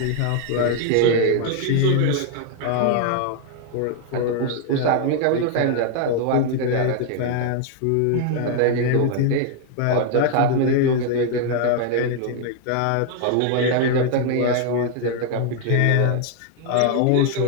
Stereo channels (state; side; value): different; both; correlation 0.00